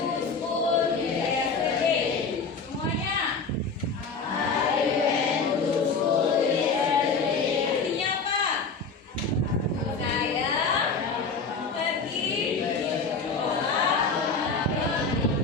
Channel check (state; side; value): quieter; right; 4.6 dB